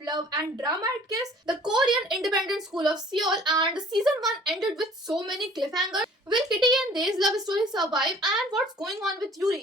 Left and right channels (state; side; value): normal; both; correlation 0.51